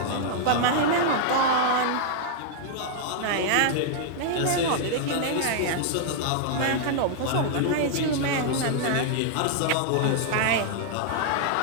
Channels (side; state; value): both; different; correlation -0.01